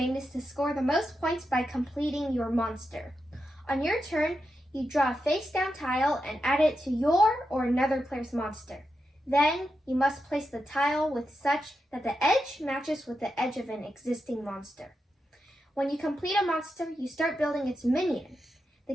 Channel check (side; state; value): both; normal; correlation 0.87